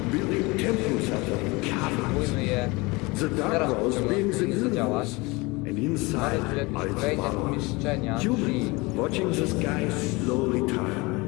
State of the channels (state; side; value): quieter; right; 24.7 dB